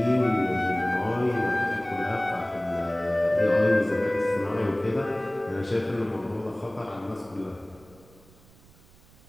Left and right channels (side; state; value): right; noise; rumble, 26 dB below the sound